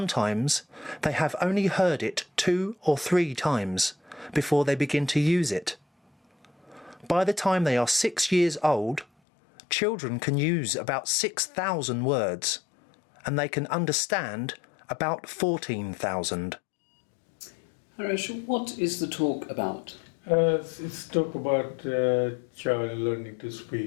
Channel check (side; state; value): right; drops out; at 9.1 s